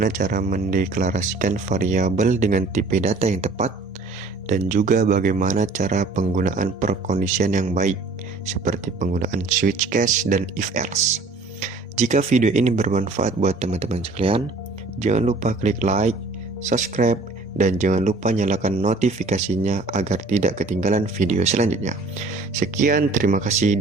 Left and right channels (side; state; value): left; quieter; 3.7 dB